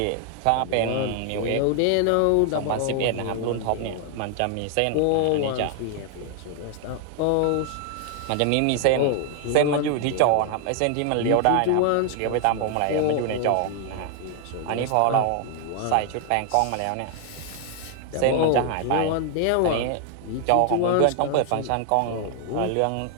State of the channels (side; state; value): both; different; correlation 0.00